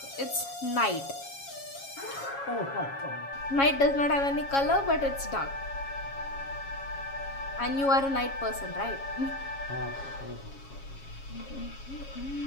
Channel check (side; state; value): right; late; 7.3 ms